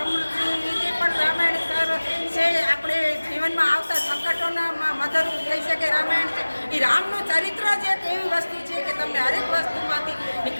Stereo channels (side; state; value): both; inverted; correlation -1.00